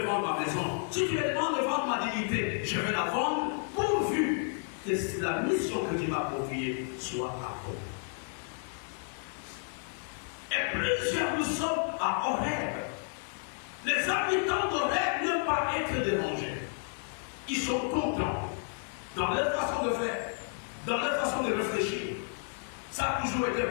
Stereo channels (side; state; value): right; silent; 57 dB below the other